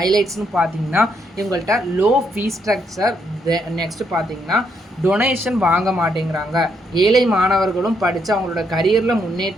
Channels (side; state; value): both; normal; correlation 0.75